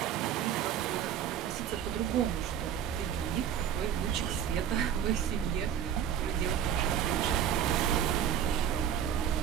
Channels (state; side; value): quieter; left; 9.3 dB